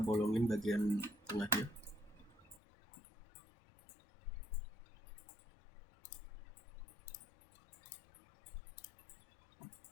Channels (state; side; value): drops out; right; at 2.6 s